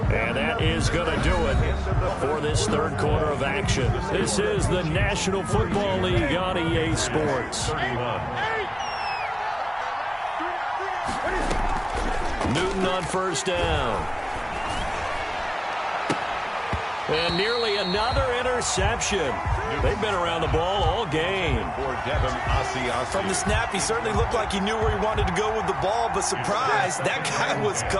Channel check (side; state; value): both; identical; correlation 1.00